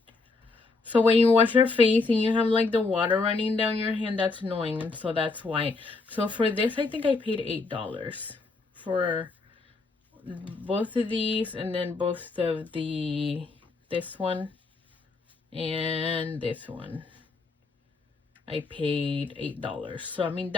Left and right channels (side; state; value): right; quieter; 3.8 dB